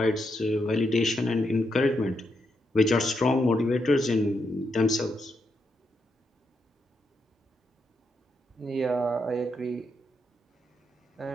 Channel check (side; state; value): both; normal; correlation 0.82